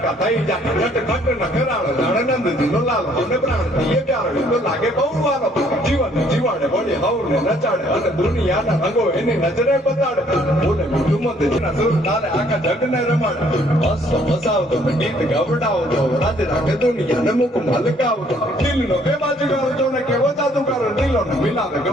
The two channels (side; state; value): both; normal; correlation 0.63